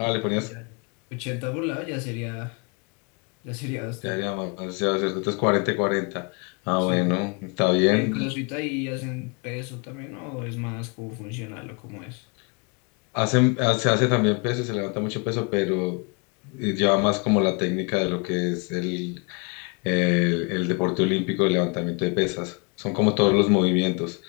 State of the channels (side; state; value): right; quieter; 32.8 dB